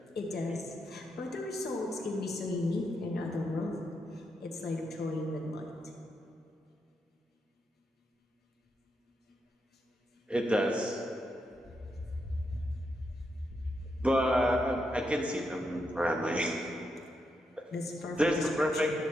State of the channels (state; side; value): normal; both; correlation 0.82